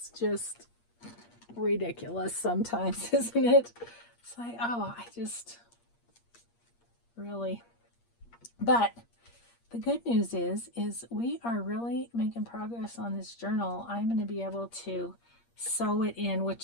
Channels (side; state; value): right; late; 8.5 ms